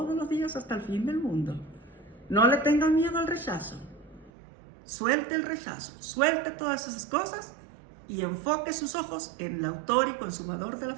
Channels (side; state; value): left; drops out; at 4.3 s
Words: los días hasta el fin del mundo. No le tengan miedo al rechazo. Suelte el rechazo, suelte todas esas cosas y enfoque sus ojos en el autor y consumador de la